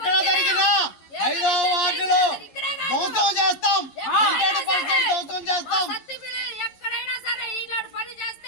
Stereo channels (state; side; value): late; right; 11 ms